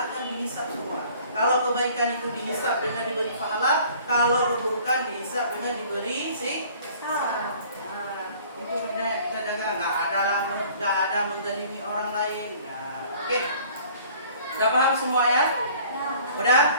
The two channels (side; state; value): both; inverted; correlation -0.52